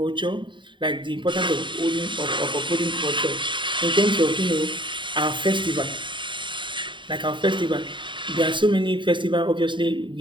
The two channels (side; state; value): left; late; 0.23 ms